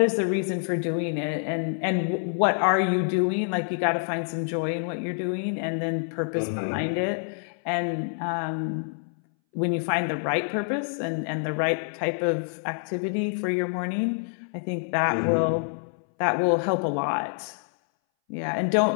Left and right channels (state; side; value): silent; right; 60 dB below the other